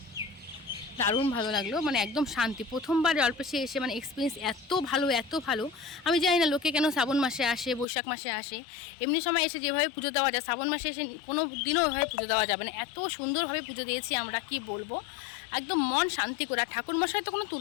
দারুণ ভালো লাগলো। মানে একদম শান্তি, প্রথমবার জলপেশে এসে মানে এক্সপিরিয়েন্স এত ভালো, এত ভালো। আমি জানি না লোকে কেন শ্রাবণ মাসে আসে, বৈশাখ মাসে আসে, এমনি সময় এসে যেভাবে পুজো দেওয়া যায়, শ্রাবণ মাসে এসে কোনো দিনও ওইভাবে পুজো দেওয়া যাবে না। এত সুন্দরভাবে পুজো দিয়েছি আমরা, কি বলবো, একদম মন শান্তি করে। আর ঠাকুর মশাই তো কোনো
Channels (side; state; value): right; drops out; at 7.9 s